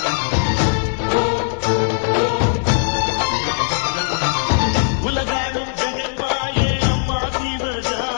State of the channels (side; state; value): right; silent; 66 dB below the other